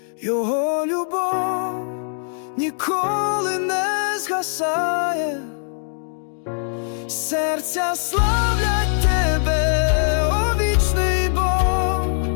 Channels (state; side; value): silent; right; digital silence